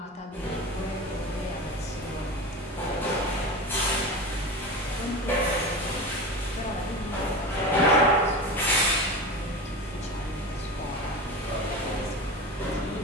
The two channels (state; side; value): normal; both; correlation 0.27